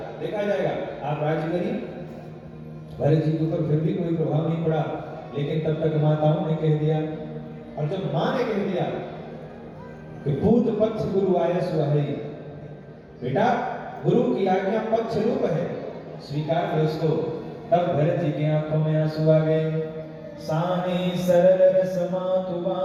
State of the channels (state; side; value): identical; both; correlation 1.00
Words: देखा जाएगा, आप राज्य करिए। भरत जी के ऊपर फिर भी कोई प्रभाव नहीं पड़ा, लेकिन तब तक माताओं ने कह दिया, और जब मां ने कह दिया कि पूत पक्ष गुरु आयस वही, बेटा गुरु की आज्ञा पक्ष रूप है, स्वीकार करो इसको। तब भरत जी की आंखों में आंसू आ गए। सानी सरल रस मातु